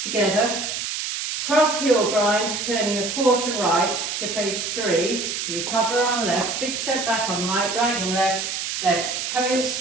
together, cross heel grind, turning a quarter right to face 3, recover on left, big step back on right, dragging left, left,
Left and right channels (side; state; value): right; noise; hiss, 3 dB below the sound